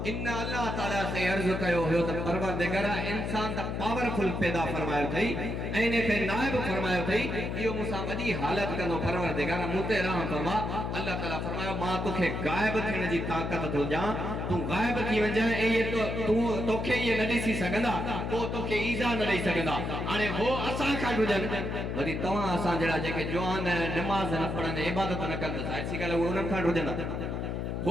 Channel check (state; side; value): noise; left; hum, 3 dB below the sound